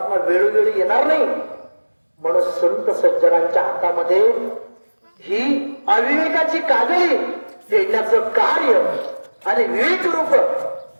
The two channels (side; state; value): both; inverted; correlation -1.00